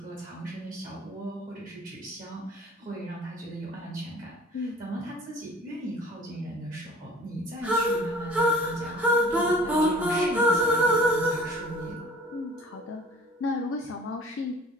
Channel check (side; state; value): both; normal; correlation 0.48